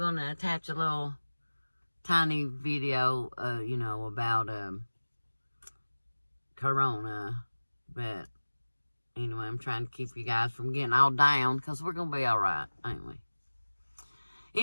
to attach a little tiny video, about Corona. But anyway, I'm trying to keep you guys from getting all down, because we're going to be all right. Anyway,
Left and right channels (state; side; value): inverted; both; correlation -1.00